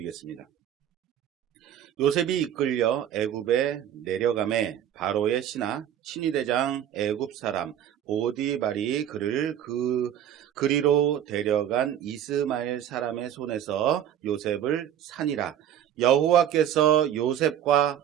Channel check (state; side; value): quieter; left; 10.4 dB